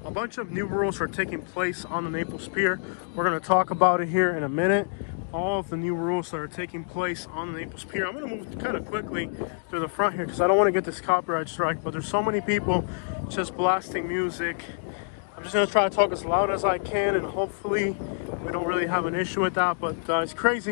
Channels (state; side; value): silent; right; digital silence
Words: A bunch of new rules are taking place on the Naples Pier. We're going to talk about it here in a minute. All of the new rules that are taking place on the Naples Pier. I'm going to move kind of quickly through the front here because I don't want to get this copyright strike, but there's so many people just blasting music. I'm just going to try to talk as loud as I can, and hopefully we don't really have an issue with that. But it's crazy